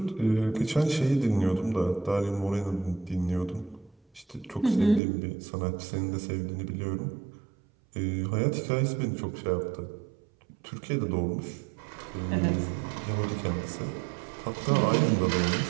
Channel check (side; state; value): left; drops out; at 5.0 s